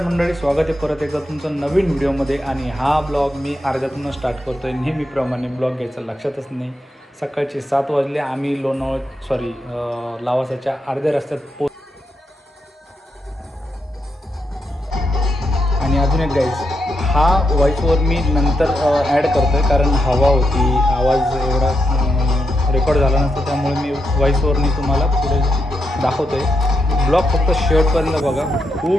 मंडळी, स्वागत आहे परत एकदा तुमचं नवीन व्हिडिओमध्ये. आणि हा ब्लॉग मी अर्ध्यातूनच स्टार्ट करतो आहे. नेहमीप्रमाणे ब्लॉग घ्यायचं लक्षातच नाही. सकाळचे 7 वाजले. आम्ही लावासाच्या अर्ध्या रस्त्यात आणि अजून एक गाईज, हा व्हॉईसवर मी नंतर ॲड करतो आहे, कारण हवा होती, आवाज एवढा रेकॉर्ड झाला नसता, त्यामुळे मी व्हॉईसवरनी तुम्हाला पुढे दाखवतो आहे. ब्लॉग फक्त शेवटपर्यंत बघा,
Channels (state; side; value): normal; both; correlation 0.84